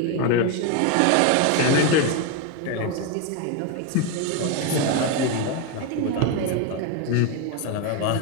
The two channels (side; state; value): both; different; correlation 0.02